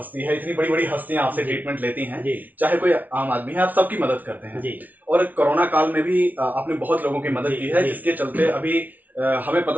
है, इतनी बड़ी बड़ी हस्तियां आपसे ट्रीटमेंट लेती हैं, चाहे कोई आम आदमी है, आप सबकी मदद करते हैं। और कोरोना काल में भी आपने बहुत लोगों की मदद की है, जिसके चलते अभी हमें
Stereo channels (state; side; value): late; left; 0.077 ms